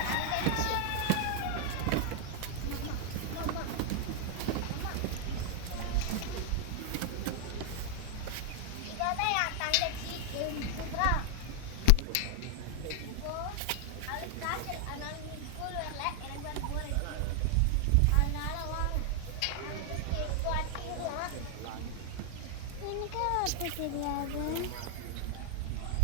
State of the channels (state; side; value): different; both; correlation 0.00